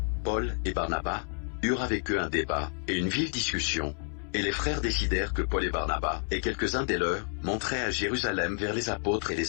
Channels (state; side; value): quieter; right; 39.8 dB